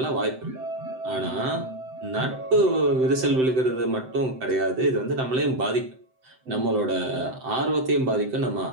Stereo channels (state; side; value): late; left; 7.8 ms